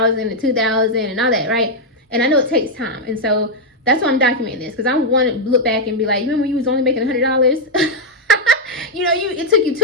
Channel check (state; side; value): normal; both; correlation -0.01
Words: to 2,000 and all that, right? And I know it takes time, and so that's why I'm documenting this, because I want to look back and be like, remember you was only making $100? You know, it took you